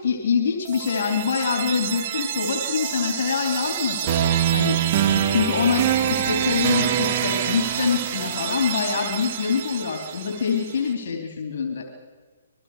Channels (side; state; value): both; inverted; correlation -0.55